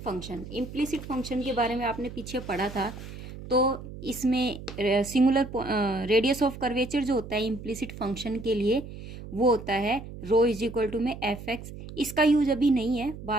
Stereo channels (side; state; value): right; noise; hum, 12 dB below the sound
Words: Implicit function के बारे में आपने पीछे पढ़ा था। तो इसमें सिंगुलर रेडियस ऑफ कर्वेचर जो होता है इम्प्लिसिट फंक्शन के लिए, वो होता है रो इज इक्वल टू में एफ एक्स। इसका यूज अभी नहीं है,